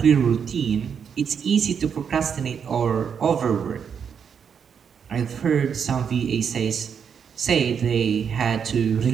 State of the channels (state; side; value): quieter; left; 7.1 dB